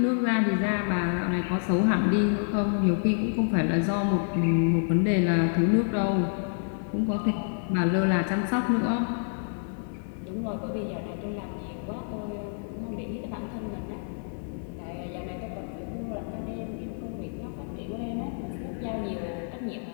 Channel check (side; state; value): right; silent; 59 dB below the other